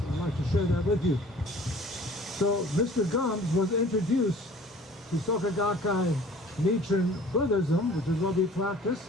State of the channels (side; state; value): both; normal; correlation 0.49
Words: I'd like to share that with you. So Mr. Gumbs was introduced to Soka Gakkai Nichiren Buddhism, which is what we practice,